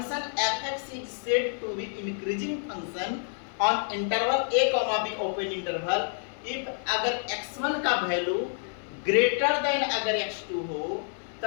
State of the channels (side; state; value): right; silent; 59 dB below the other